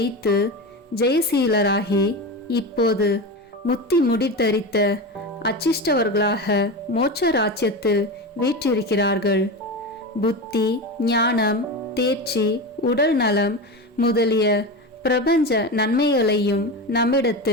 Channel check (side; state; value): both; normal; correlation 0.23